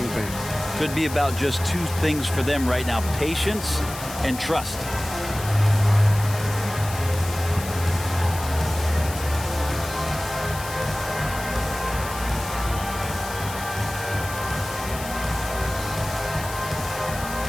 things. Could be about just 2 things for them right now: patience and trust.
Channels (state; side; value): noise; left; hiss, 11 dB below the sound